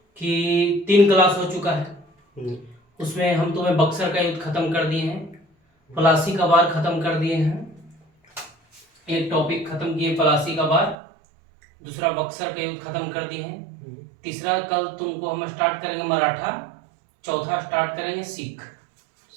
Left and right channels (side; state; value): left; drops out; at 11.0 s